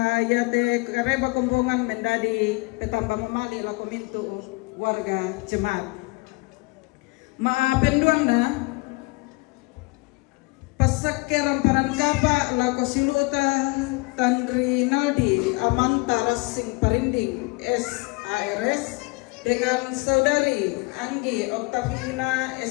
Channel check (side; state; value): right; quieter; 26.2 dB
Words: yate kareba kumpungan mendadi petambang mamali lo kumintu warga jemaat. Maapenduang na pasake ramparan kapa lako siluta Tandri Naldi Amanta Rasing Parinding SARS dengan saudari Anggi Oktavina